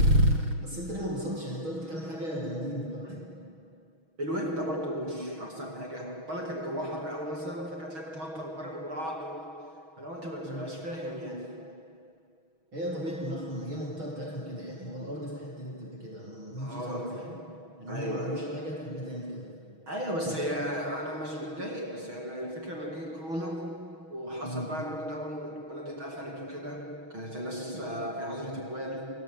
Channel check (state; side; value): late; left; 6.3 ms